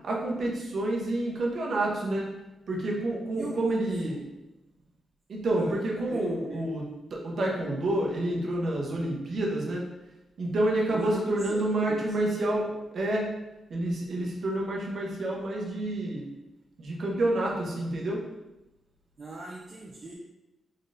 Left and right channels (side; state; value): both; normal; correlation 0.81